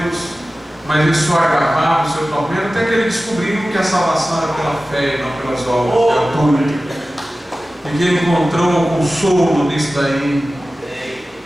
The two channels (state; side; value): normal; both; correlation 0.96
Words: mas isso só agravava o seu tormento, até que ele descobriu que a salvação era pela fé e não pelas obras gratuitas, e que ele encontrou consolo nisso daí.